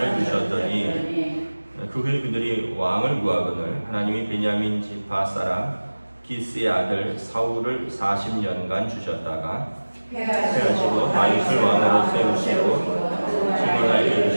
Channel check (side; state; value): both; inverted; correlation -1.00